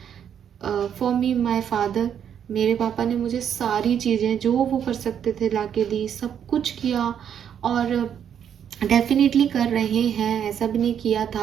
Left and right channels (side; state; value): left; quieter; 8.7 dB